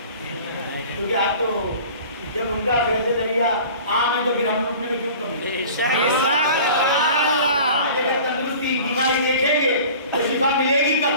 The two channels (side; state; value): both; inverted; correlation -0.43